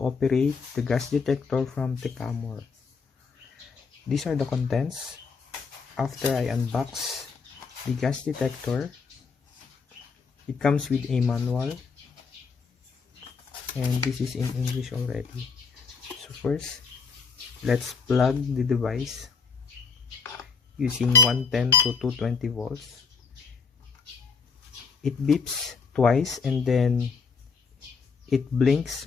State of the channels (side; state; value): right; quieter; 5.2 dB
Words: the gas detector from Techamor. These are the contents. After I unbox the gas detector, it comes with a manual and this is in English already. So first, let's plug the device using 110 to 220 volts. It beeps twice and then it blinks